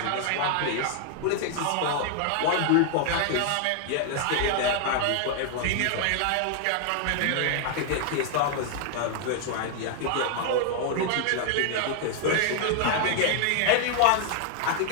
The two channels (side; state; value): both; different; correlation 0.00